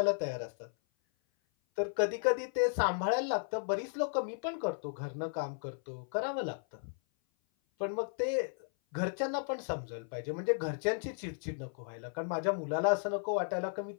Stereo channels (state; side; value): silent; right; 55 dB below the other